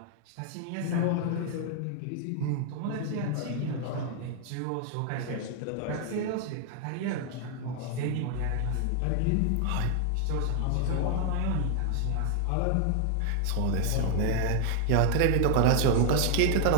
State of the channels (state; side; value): different; both; correlation 0.00